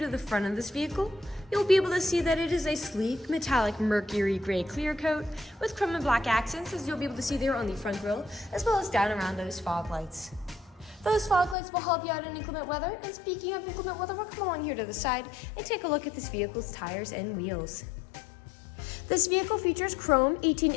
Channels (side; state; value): right; drops out; at 11.6 s